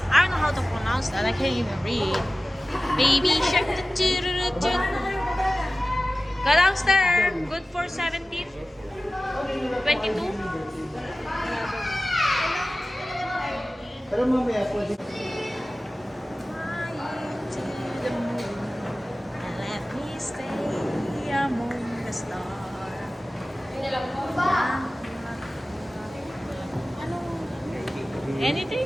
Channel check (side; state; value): both; normal; correlation 0.96